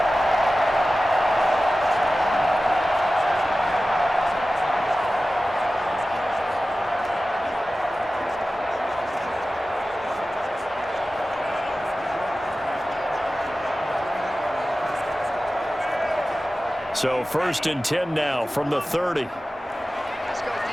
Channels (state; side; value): normal; both; correlation 0.95